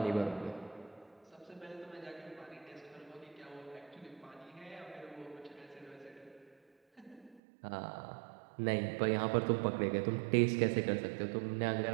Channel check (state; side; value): drops out; left; at 7.4 s